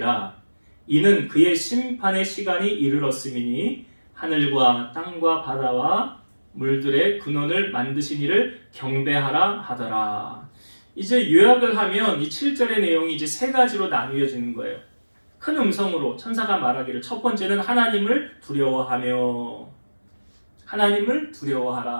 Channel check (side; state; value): both; inverted; correlation -1.00